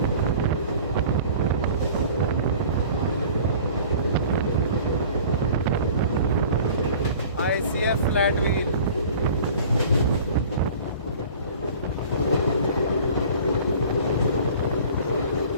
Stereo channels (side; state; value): both; inverted; correlation -0.45